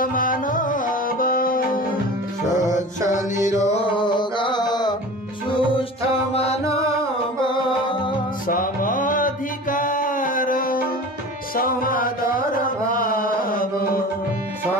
मानव स्वच्छ निरोग सुस्थ मानव समाधिकार समादर भाव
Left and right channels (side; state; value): both; normal; correlation 0.37